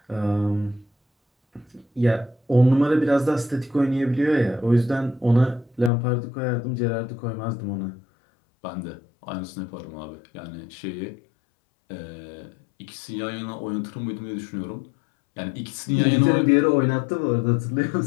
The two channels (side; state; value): right; drops out; at 5.9 s